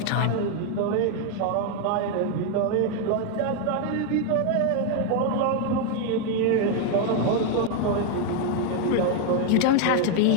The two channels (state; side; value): different; both; correlation 0.01